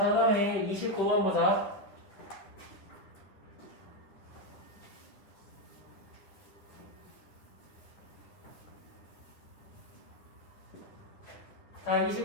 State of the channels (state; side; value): late; right; 10 ms